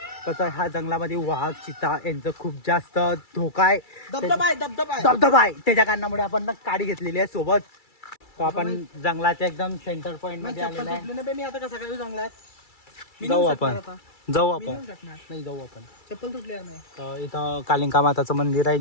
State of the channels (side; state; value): right; late; 2.3 ms